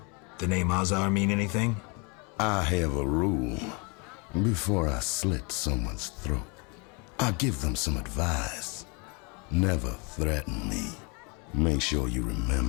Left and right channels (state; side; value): quieter; right; 30.7 dB